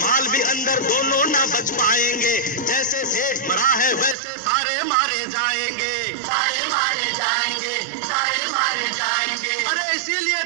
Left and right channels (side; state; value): left; drops out; at 4.2 s